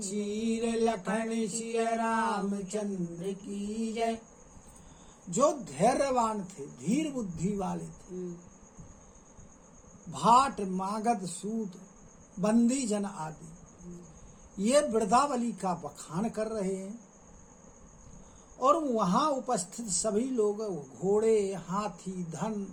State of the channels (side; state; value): both; identical; correlation 1.00